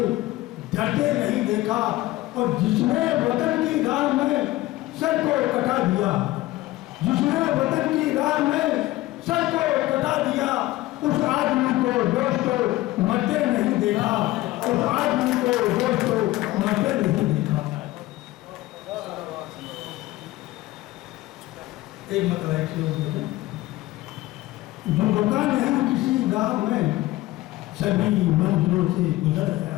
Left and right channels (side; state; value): right; quieter; 17.8 dB